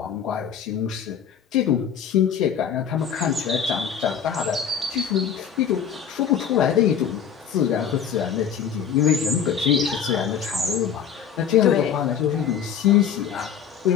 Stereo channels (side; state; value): right; quieter; 8.0 dB